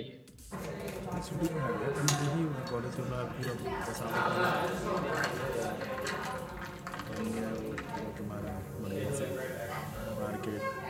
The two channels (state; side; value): identical; both; correlation 1.00